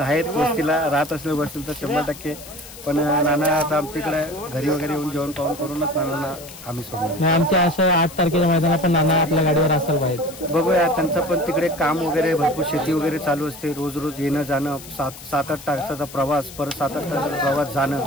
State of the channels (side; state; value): left; noise; hiss, 16 dB below the sound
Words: वस्तीला, राहत असले बसतील तर 100%. पण नाना आता आमच्याकडे घरी वगैरे येऊन जेवण पाहून करूनच नानांना आम्ही सोडलो. आमच्या असं 8 तारखेच्या मैदानात पण नाना आपल्या गाडीवर असायला पाहिजे. बघूया, त्यांचं पण तिकडे काम वगैरे भरपूर, शेती वगैरे चालू असते. रोज येणं जाणं, 7-8 तासाचा प्रवास, परत 7-8 तासाचा प्रवास जाणं,